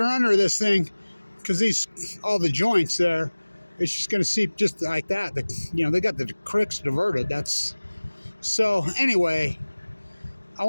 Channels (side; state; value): both; inverted; correlation -1.00